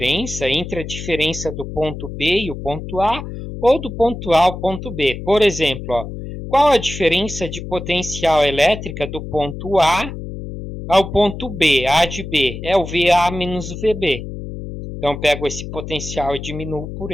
entre a diferença do ponto B e o ponto A, ou do ponto A ao ponto B. Por exemplo, ó, qual a diferença de potencial elétrica do ponto A ao ponto B? A de B é o VA menos o VB. Então, pego esse potencial e diminuo por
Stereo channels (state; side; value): noise; left; hum, 9 dB below the sound